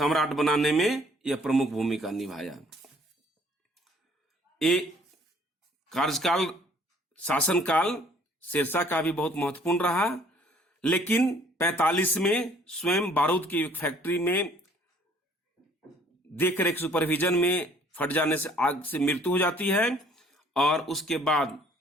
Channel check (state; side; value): normal; both; correlation 0.58